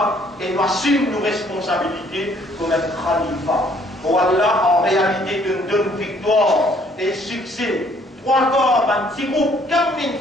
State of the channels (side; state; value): both; normal; correlation 0.62